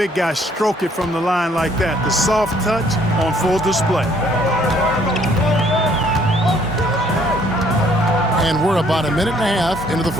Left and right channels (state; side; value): normal; both; correlation 0.63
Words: guy stroke it from the line like that. The soft touch on full display. And we're about a minute and a half into the